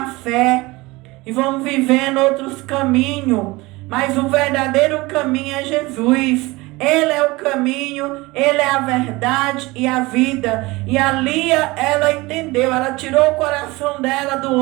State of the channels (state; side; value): quieter; left; 22.1 dB